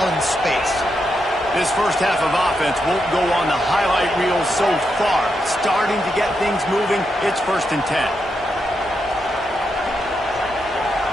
in space. This first half of offense won't go on the highlight reel so far. Starting to get things moving, it's 1st and 10.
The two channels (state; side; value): normal; both; correlation 0.83